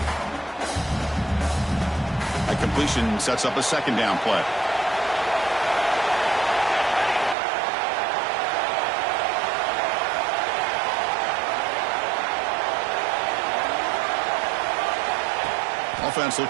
That completion sets up a 2nd down play. Offense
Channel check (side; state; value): left; drops out; at 7.4 s